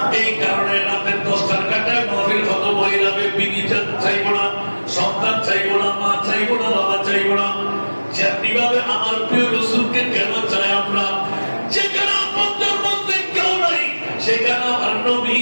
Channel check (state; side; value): inverted; both; correlation -1.00